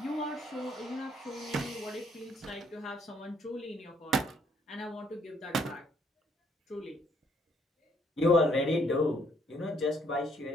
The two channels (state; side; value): normal; both; correlation 0.67